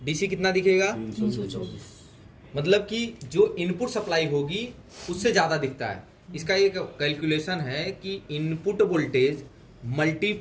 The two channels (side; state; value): both; identical; correlation 1.00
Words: DC कितना दिखेगा, 324। मतलब कि जो इनपुट सप्लाई होगी उससे ज़्यादा दिखता है। इसका एक कैलकुलेशन है कि इनपुट वोल्टेज